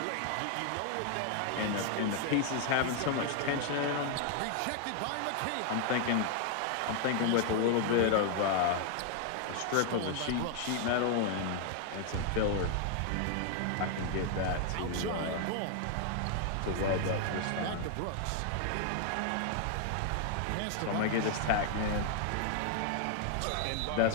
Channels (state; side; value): different; both; correlation 0.00